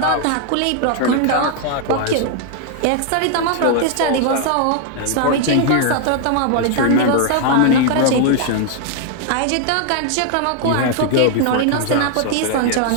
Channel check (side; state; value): both; different; correlation 0.00